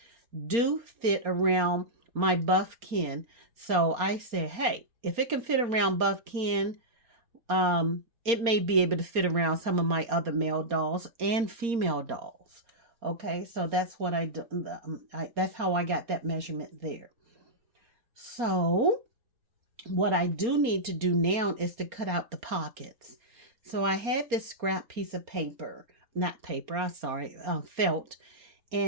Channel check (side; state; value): left; late; 4.3 ms